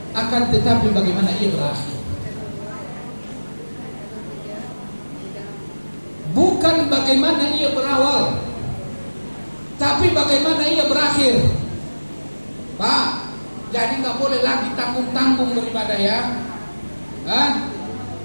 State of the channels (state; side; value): inverted; both; correlation -1.00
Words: akan tetapi bagaimana ia berakhir. Bukan bagaimana ia berawal, tapi bagaimana ia berakhir. Pak, jadi nggak boleh lagi tanggung-tanggung beribadah ya.